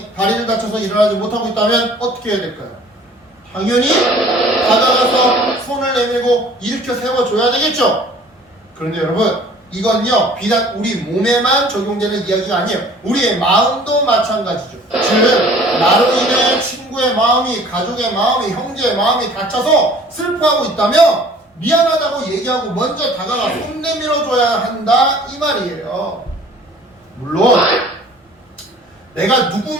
다리를 다쳐서 일어나지 못하고 있다면 어떻게 해야 될까요? 당연히 다가가서 손을 내밀고 일으켜 세워줘야 되겠죠. 그런데 여러분 이건요 비단 우리 몸에만 적용되는 이야기가 아니에요. 우리의 마음도 마찬가지죠. 즉 나로 인해 친구의 마음이, 가족의 마음이, 형제의 마음이 다쳐서 슬퍼하고 있다면 미안하다고 얘기하고 먼저 다가가 손 내밀어줘야 한다 이 말이에요. 물론 내가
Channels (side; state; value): both; normal; correlation 0.51